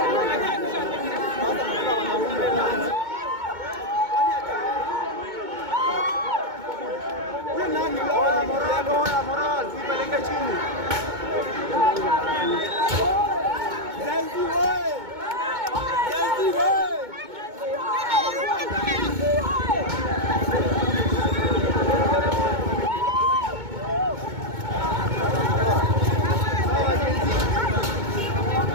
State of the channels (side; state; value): left; late; 2.2 ms